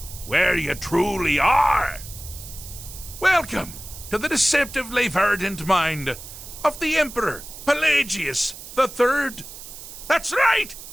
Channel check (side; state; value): right; noise; hiss, 14 dB below the sound